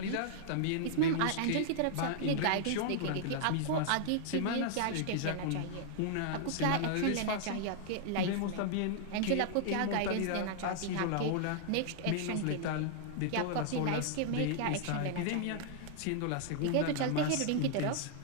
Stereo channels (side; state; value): both; different; correlation -0.01